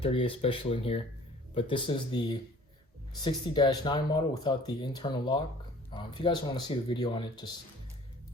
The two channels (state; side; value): normal; both; correlation 0.50